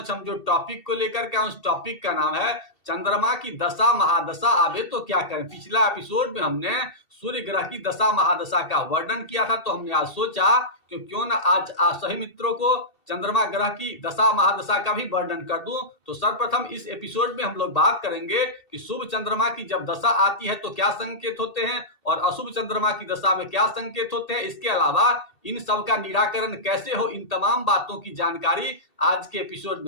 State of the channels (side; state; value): right; late; 2.7 ms